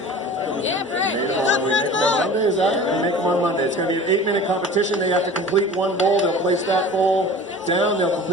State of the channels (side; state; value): both; normal; correlation 0.40